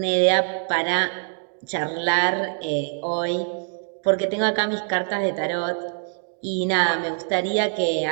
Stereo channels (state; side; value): silent; left; digital silence